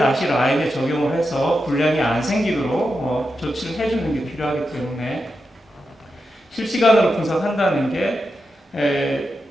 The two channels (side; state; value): both; normal; correlation 0.88